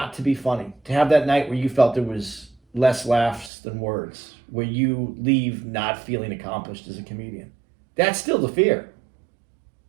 to be funny. To have that night where you felt there was less laughs than words, where you leave not feeling accomplished as a comedian. That's still the fear.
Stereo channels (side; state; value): left; drops out; at 3.5 s